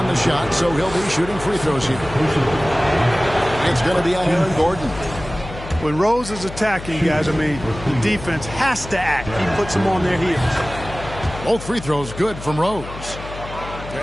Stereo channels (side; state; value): left; noise; hum, 12 dB below the sound